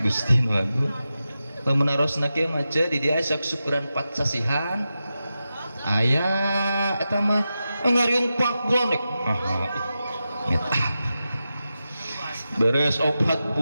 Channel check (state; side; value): inverted; both; correlation -0.92